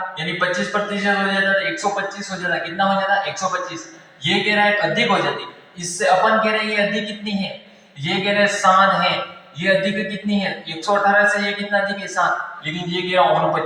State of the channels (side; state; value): both; identical; correlation 1.00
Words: यानी 25% हो जाता है 125 हो जाता। कितना हो जाता 125। ये कह रहा है अधिक हो जाती। इससे अपन कह रहे हैं ये अधिक कितनी है, ये कह रहे हैं 7 है। ये अधिक कितनी है 118 से ये कितना अधिक है 7। लेकिन ये कह रहा